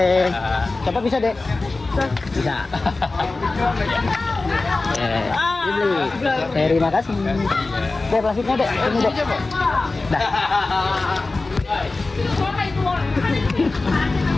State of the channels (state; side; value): quieter; right; 3.4 dB